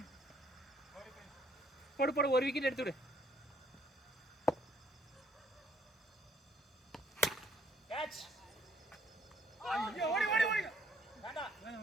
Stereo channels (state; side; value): normal; both; correlation 0.65